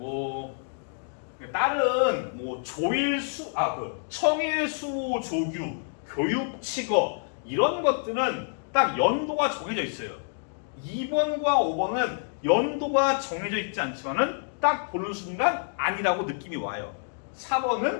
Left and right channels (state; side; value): silent; right; digital silence